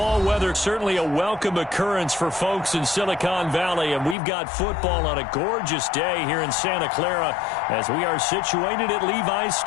weather, certainly a welcome occurrence for folks in Silicon Valley, and we've got football on a gorgeous day here in Santa Clara as we are situated at Levi's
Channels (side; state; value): right; drops out; at 4.2 s